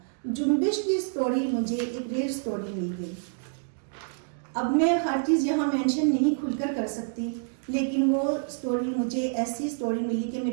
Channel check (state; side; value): silent; left; digital silence